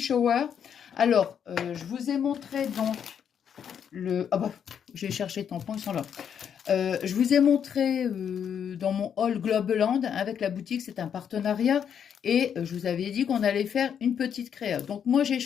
Alors, je vous ai montré donc le... Ah bah, j'ai cherché tampons, ils sont là. Je vous ai montré dans mon haul Globeland avec la boutique, c'est un partenariat. Et je vous avais dit qu'on allait faire une petite créa. Donc moi, j'ai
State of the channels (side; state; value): right; quieter; 8.1 dB